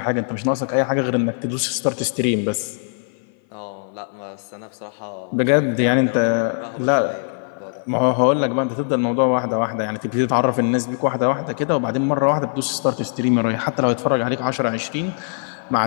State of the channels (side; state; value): right; silent; 56 dB below the other